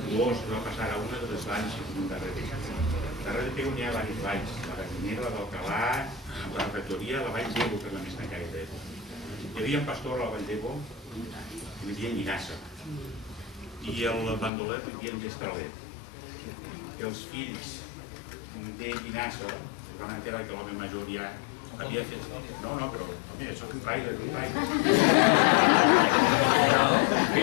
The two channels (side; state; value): right; drops out; at 14.5 s